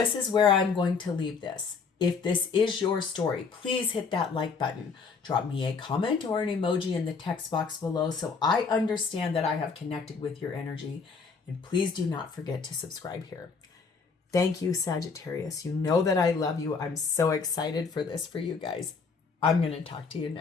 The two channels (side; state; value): right; quieter; 5.1 dB